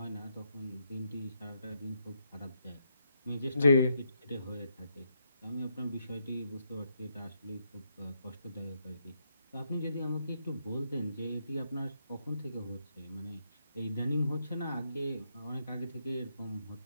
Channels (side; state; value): both; inverted; correlation -0.79